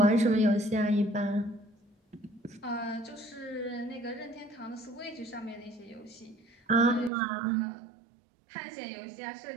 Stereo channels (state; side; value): drops out; left; at 7.1 s